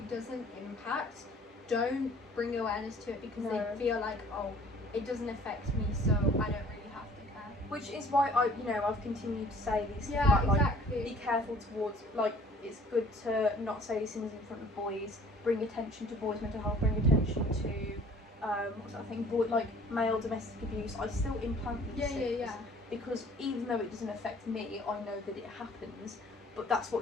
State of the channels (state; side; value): normal; both; correlation 0.53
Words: doesn't impact don't bring awareness to it, because they feel like, oh, it doesn't affect me, so I don't really have to care. Which is why I've continued to say these things about, like, be careful towards, like, it's good to not say these things in front of boys, bring attention to boys' mental health, bring attention to what's that thing, like male domestic abuse. I still implant these things because even though it doesn't affect me, I know that it happens, but that's